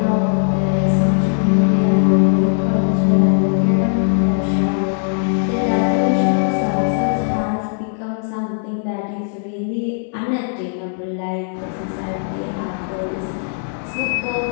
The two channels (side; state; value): right; silent; 67 dB below the other